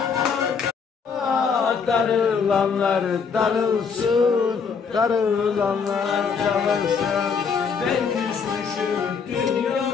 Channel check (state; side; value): quieter; right; 5.9 dB